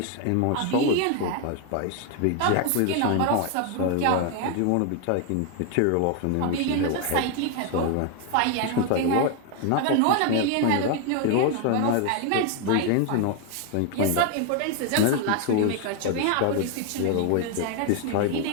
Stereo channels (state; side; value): different; both; correlation 0.01